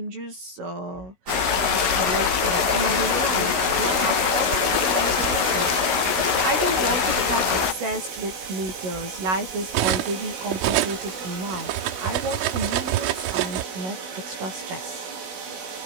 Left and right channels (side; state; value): left; late; 16 ms